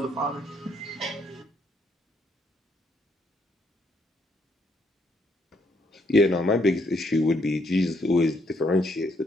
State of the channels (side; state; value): both; normal; correlation 0.72